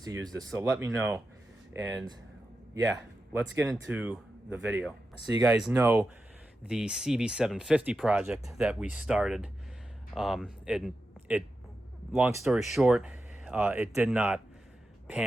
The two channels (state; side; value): normal; both; correlation 0.90